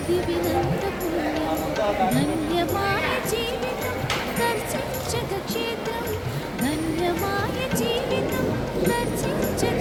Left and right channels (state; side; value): identical; both; correlation 1.00